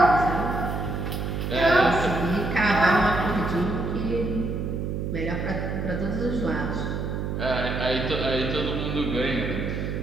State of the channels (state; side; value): noise; right; hum, 3 dB below the sound